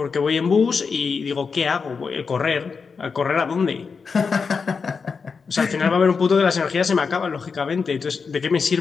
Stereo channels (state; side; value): quieter; right; 5.3 dB